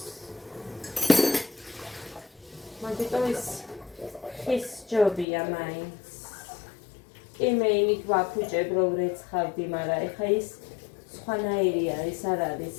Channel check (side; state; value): right; drops out; at 5.2 s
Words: მაგიტო ის ხის ჯობია მაინც. კი მე იმით ვაფუჭებ რომ რეცხავდი, მაგრამ ეხა ის სხვანაირი არის, არ არის